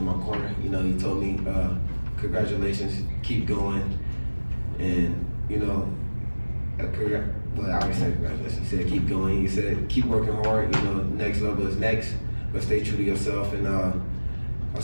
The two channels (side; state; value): both; inverted; correlation -1.00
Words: my corner. You know, he told me, congratulations, keep going. And, you know, well, I always say congratulations. He said, keep going. He said, keep working hard. You know, next level is next, but stay true to yourself. And I